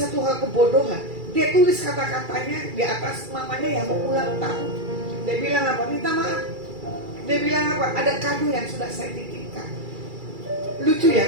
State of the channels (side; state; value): left; late; 2.3 ms